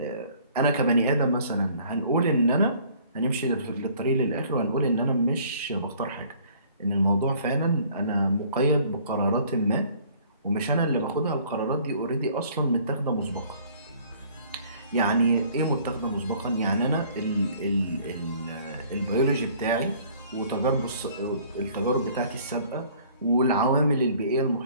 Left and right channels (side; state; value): both; inverted; correlation -0.56